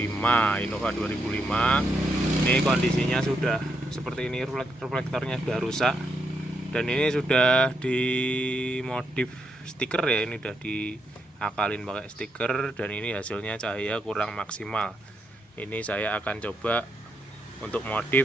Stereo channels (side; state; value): both; normal; correlation 0.79